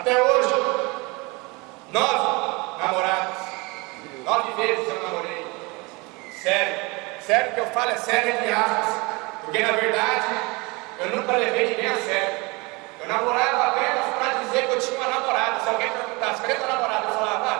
hoje, 9 namoradas. 9 vezes eu namorei. Sério que eu falo é sério entre aspas. Porque na verdade, eu nunca levei ninguém a sério. Eu namorava apenas para dizer que eu tinha uma namorada. Se alguém perguntasse, cadê tua namorada? Eu falava,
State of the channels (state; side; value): quieter; left; 26.3 dB